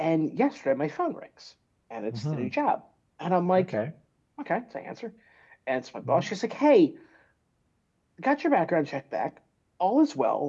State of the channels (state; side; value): identical; both; correlation 1.00